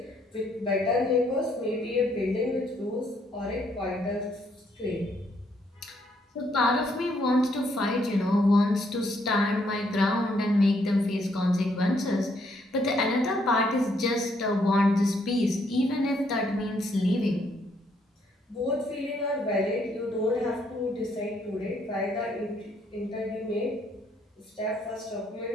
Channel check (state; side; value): normal; both; correlation 0.71